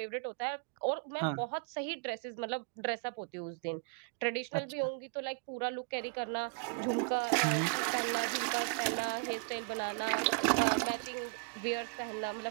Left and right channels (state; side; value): quieter; left; 38.7 dB